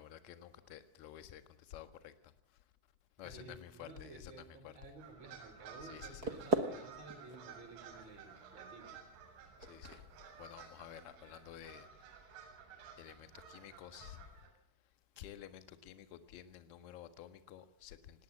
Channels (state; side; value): late; left; 4.3 ms